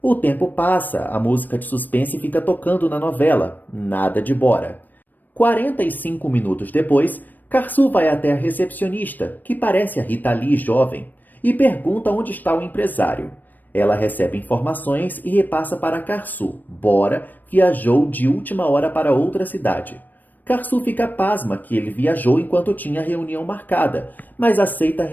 O tempo passa, a música de suspense fica tocando na novela, nada de Bora. 45 minutos depois, Karsu vai até a recepcionista, que parece a Rita Lee jovem, e pergunta onde está o empresário. Ela recebe informações e repassa para Karsu. Bora viajou de última hora para outra cidade. Karsu fica pasma que ele viajou enquanto tinha reunião marcada, mas aceita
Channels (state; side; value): late; right; 0.088 ms